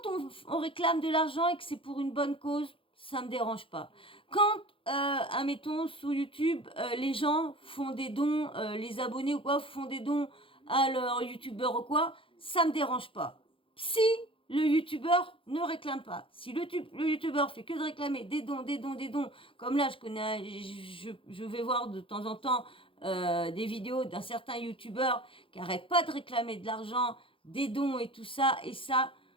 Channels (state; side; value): late; right; 0.26 ms